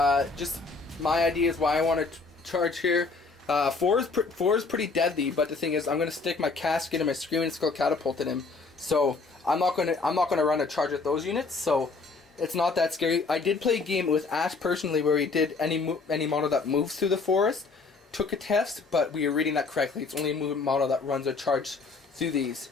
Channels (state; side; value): quieter; right; 4.2 dB